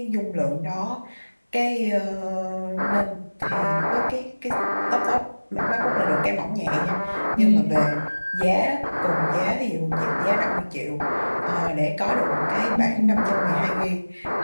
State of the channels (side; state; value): both; inverted; correlation -1.00